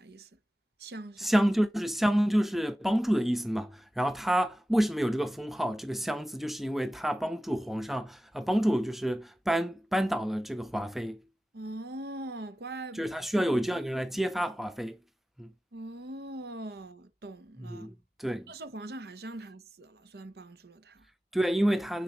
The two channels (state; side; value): normal; both; correlation 0.95